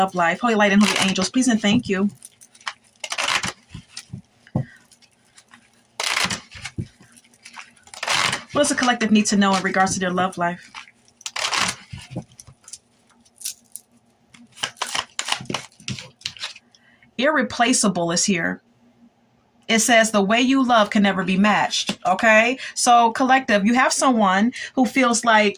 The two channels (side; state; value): both; identical; correlation 1.00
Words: life? Holy light and holy angels, please and thank you. What does the collective need to know in regards to their love life? Irreplaceable is here. It says the way you love can never be matched. Okay. So collective, you have someone who feels